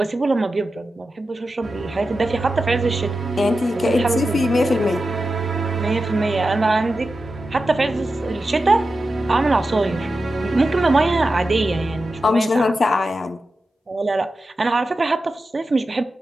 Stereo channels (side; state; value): both; normal; correlation 0.91